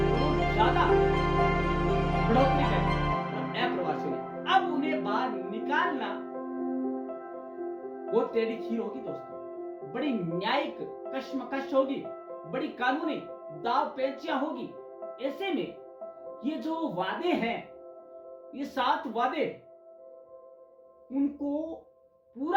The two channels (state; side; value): identical; both; correlation 1.00